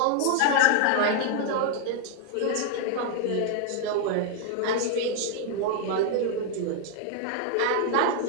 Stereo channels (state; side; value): different; both; correlation 0.00